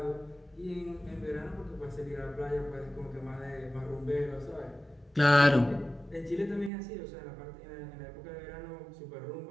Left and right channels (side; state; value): left; drops out; at 6.7 s